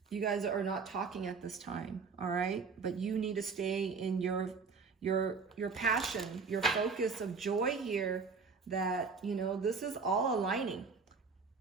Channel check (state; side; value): quieter; left; 5.0 dB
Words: you guys are not talking at this time, all right? But you need to stay in your passion, your focus of joy here, that, you know, this is all aligning